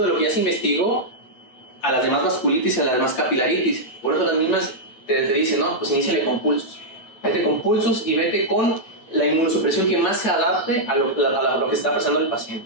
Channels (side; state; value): right; late; 8.8 ms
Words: de lo que ya se investigó a las demás vasculitis y a las demás capilaritis. Por eso las mismas te dicen, no, pues iníciale con pulsos. Vete con pulsos y vete con la inmunosupresión que más se adapte a lo que está pasando el